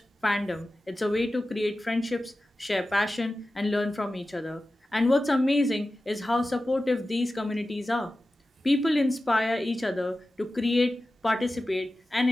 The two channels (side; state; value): both; normal; correlation 0.94